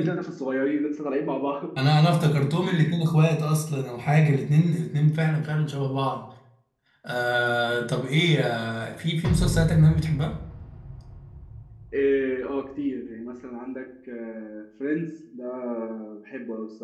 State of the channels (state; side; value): identical; both; correlation 1.00